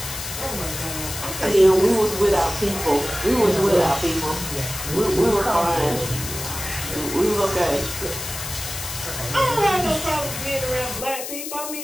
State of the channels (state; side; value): noise; left; hiss, 7 dB below the sound